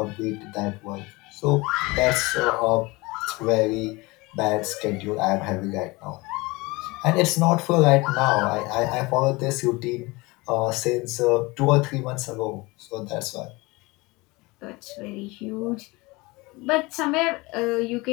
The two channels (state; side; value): quieter; right; 23.7 dB